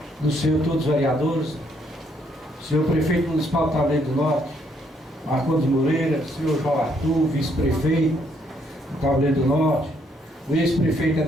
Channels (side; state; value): both; normal; correlation 0.71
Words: do senhor todos os vereadores, senhor prefeito municipal de Tabuleiro do Norte, Marcondes Moreira, senhor João Arthur, vice-prefeito do Tabuleiro do Norte, o ex-prefeito